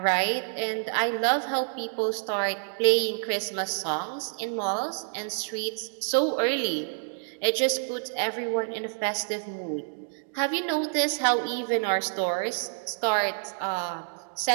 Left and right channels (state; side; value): silent; left; digital silence